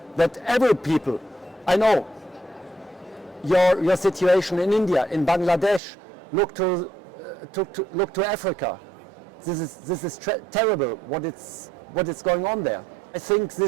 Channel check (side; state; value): left; drops out; at 5.8 s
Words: that every people. I know your situation in India, in Bangladesh. Look to Africa. This is terrible. What is going on there? I think